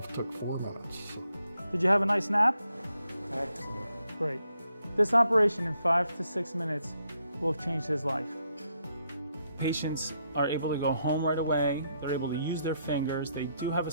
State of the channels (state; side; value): inverted; both; correlation -0.77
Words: took 4 minutes. So. Did you have a nice nap? Excellent. Great. This operation in 5 to 6 minutes will have changed his life. Patients are able to go home right away. They're able to use their fingers. They do have a